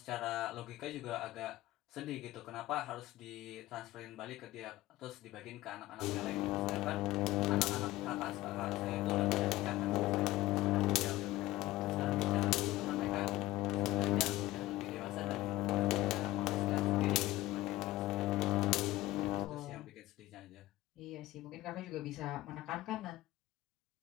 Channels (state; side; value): quieter; right; 17.3 dB